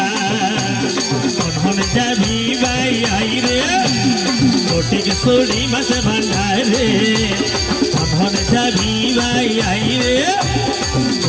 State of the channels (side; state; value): both; identical; correlation 1.00